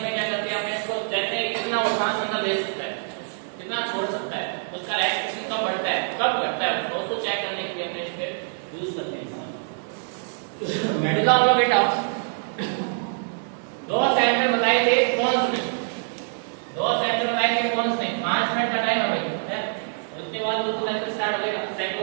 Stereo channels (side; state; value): left; silent; digital silence